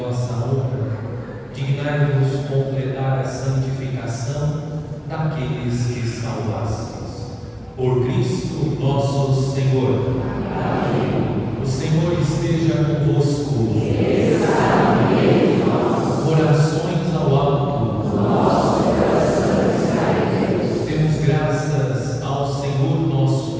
honra, dignai-vos completar a santificação daqueles que salvastes. Por Cristo nosso Senhor. Amém. O Senhor esteja convosco. Orações ao alto. Nosso coração está em Deus. Demos graças ao Senhor nosso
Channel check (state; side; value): identical; both; correlation 1.00